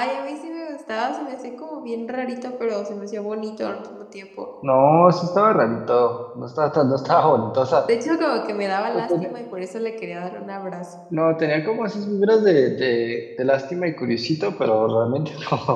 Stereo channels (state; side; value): identical; both; correlation 1.00